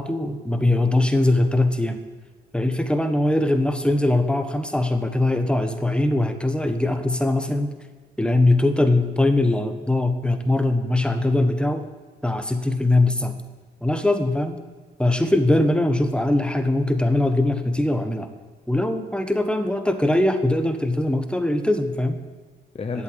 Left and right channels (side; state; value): both; normal; correlation 0.91